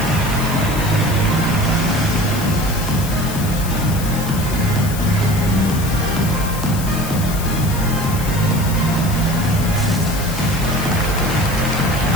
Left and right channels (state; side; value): noise; left; hiss, 10 dB below the sound